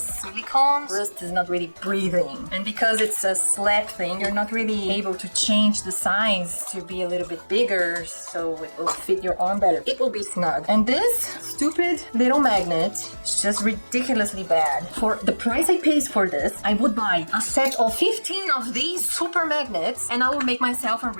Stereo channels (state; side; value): inverted; both; correlation -1.00